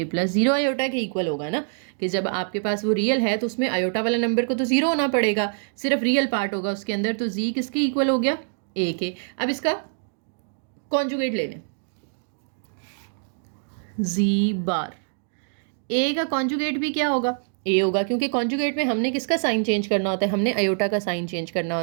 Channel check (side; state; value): left; silent; 62 dB below the other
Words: प्लस 0 आयोटा के इक्वल होगा ना, कि जब आपके पास वो रियल है तो उसमें आयोटा वाला नंबर को तो 0 होना पड़ेगा, सिर्फ रियल पार्ट होगा उसके अंदर, तो जी किसके इक्वल हो गया, ए के। अब इसका कॉन्जुगेट ले लें, जी बार, ए का कॉन्जुगेट भी क्या होगा, ए होगा, क्योंकि कॉन्जुगेट में हमने किसका साइन चेंज करना होता है, हमने आयोटा का साइन चेंज करना